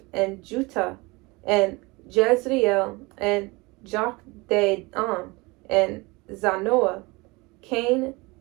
and Juttah, and Jezreel, and Jokdeam, and Zanoah, Cain,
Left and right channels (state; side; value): quieter; left; 24.6 dB